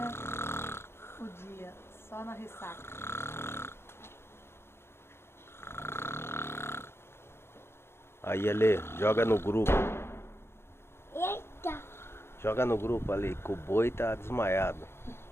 o dia, só na ressaca. Aí, Ale, joga no grupo. Eita! Joga no grupo ali, que o boi tá desmaiado.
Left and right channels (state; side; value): late; right; 0.12 ms